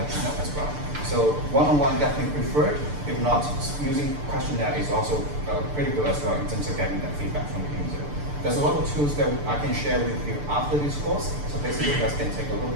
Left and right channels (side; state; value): left; late; 6.8 ms